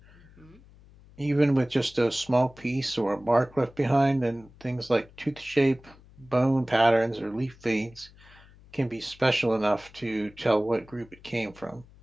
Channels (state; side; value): noise; left; hum, 24 dB below the sound